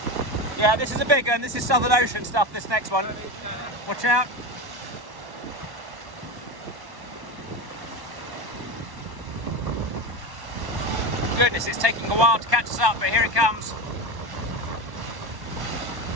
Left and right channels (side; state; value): left; late; 1.1 ms